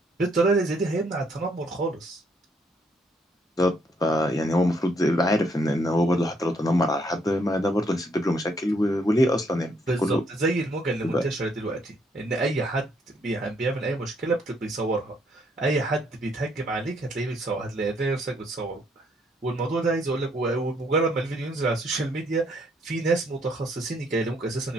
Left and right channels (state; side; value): normal; both; correlation 0.70